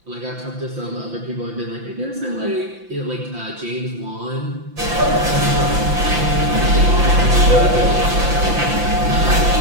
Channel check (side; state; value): left; late; 5.9 ms